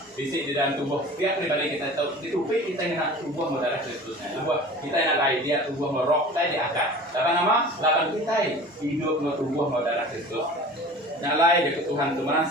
bisik di dalam tubuh setiap pribadi kita tahu itu kita nak tubuh saudara Kristusnya. Tubuh kita nak lain dia tubuh roh kita diangkat. Lapan nama, lapan kita hidup no tubuh saudara Kristus. Yang lain jadi Tuhan itu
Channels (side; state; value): both; normal; correlation 0.40